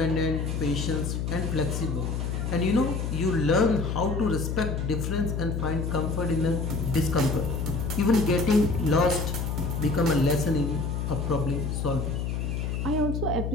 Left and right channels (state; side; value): noise; left; hum, 1 dB below the sound